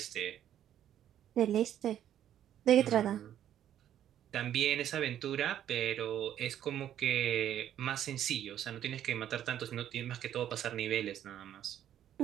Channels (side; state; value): left; quieter; 10.8 dB